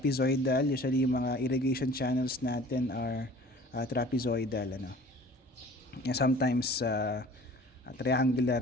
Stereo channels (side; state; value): both; normal; correlation 0.47